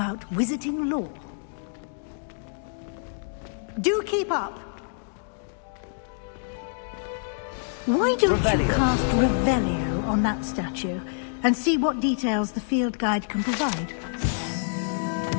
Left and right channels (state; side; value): silent; right; digital silence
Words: wizarding lore. Do keep up! Why don't you cast Revelio on that statue and see what details the field guide can provide?